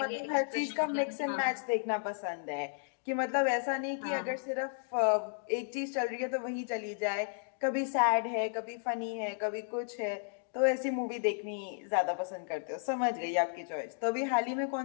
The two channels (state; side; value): silent; right; digital silence